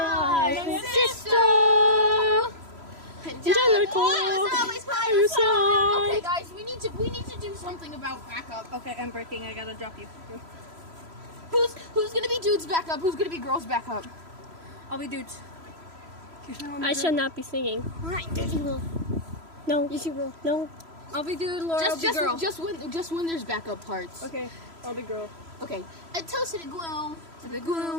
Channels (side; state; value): left; late; 3.0 ms